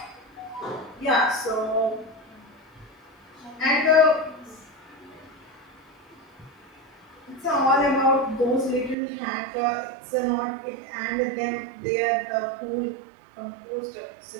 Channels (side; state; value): left; drops out; at 9.0 s